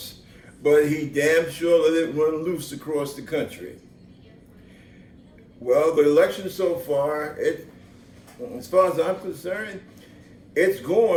but he damn sure let it run loose across the country. Well, the election so far, as far as I'm concerned, it's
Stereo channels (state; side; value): identical; both; correlation 1.00